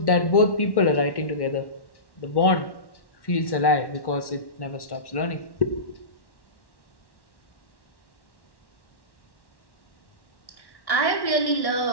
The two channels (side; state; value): right; late; 1.1 ms